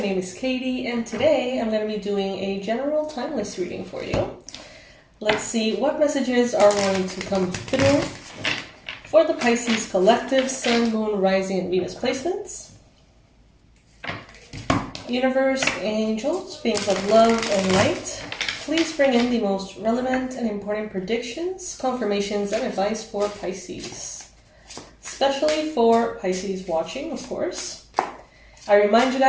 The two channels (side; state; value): both; identical; correlation 1.00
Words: is Katie and today I'm going to be doing a general timeless reading for you. Let's see what messages are going to come through for the Pisces collective Sun, Moon, Rising, and Venus placements. Universe, angels, beings of love and light, please bring in the most relevant and important predictions, confirmations, and advice for Pisces. Especially for Pisces watching, of course. I remind you